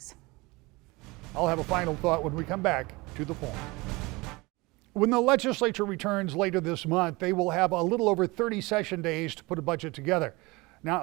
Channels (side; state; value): left; quieter; 23.7 dB